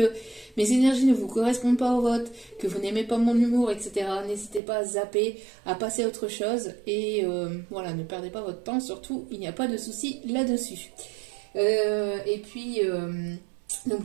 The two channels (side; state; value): left; drops out; at 4.6 s